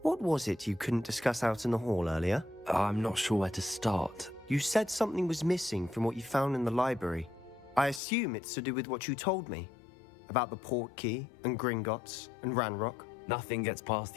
what was it you couldn't discuss out in the hall earlier? I'm not sure where to start. You said something was missing from what you found in the library. I assume it's to do with what you told me. About the Portkey, and Gringotts, and Ranrock. Nothing gets past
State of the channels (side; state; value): right; drops out; at 8.0 s